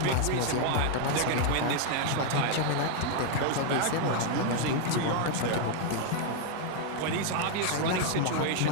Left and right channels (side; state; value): both; different; correlation 0.00